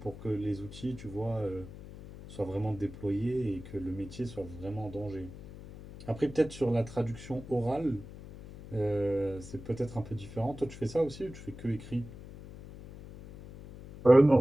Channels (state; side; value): noise; left; hum, 14 dB below the sound